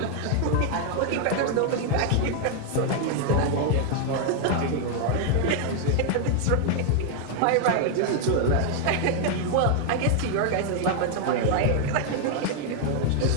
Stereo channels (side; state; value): both; different; correlation 0.00